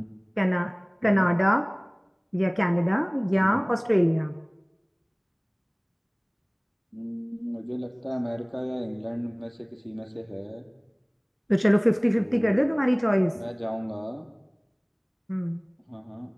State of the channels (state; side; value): identical; both; correlation 1.00